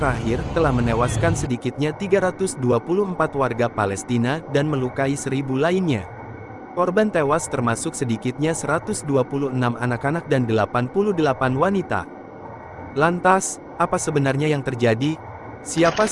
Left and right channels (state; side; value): identical; both; correlation 1.00